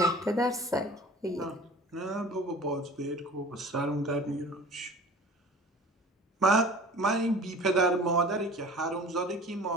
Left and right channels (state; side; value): normal; both; correlation 0.43